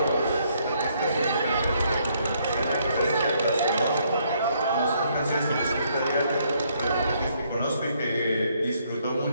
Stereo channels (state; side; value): inverted; both; correlation -0.70